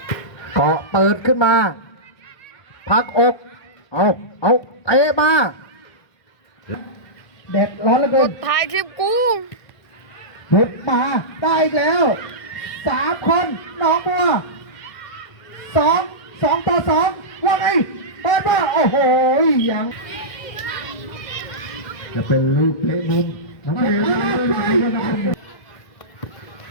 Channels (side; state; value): right; late; 1.6 ms